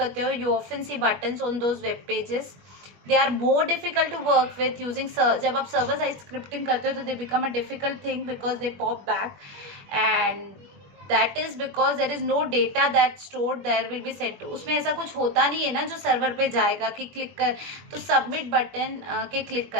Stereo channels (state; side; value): late; left; 21 ms